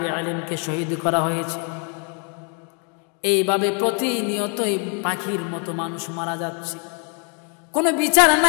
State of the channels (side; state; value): right; quieter; 38.2 dB